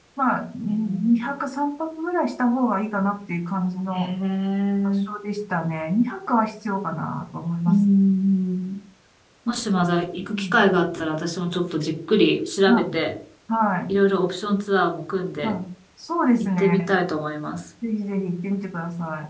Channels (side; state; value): both; identical; correlation 1.00